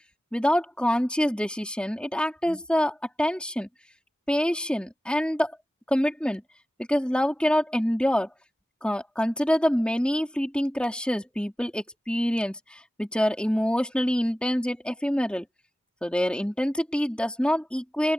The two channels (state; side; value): normal; both; correlation 0.95